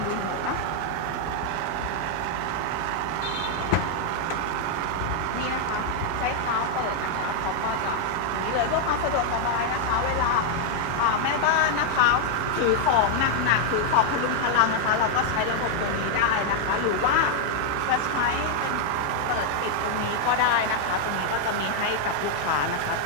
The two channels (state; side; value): different; both; correlation 0.00